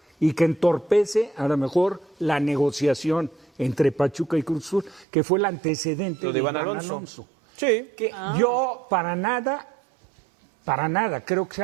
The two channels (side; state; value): left; drops out; at 5.1 s